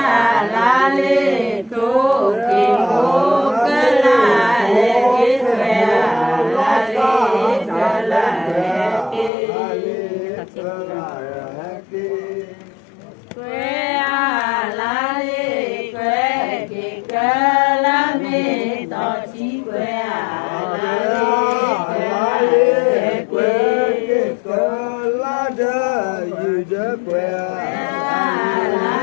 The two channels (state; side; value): drops out; right; at 9.3 s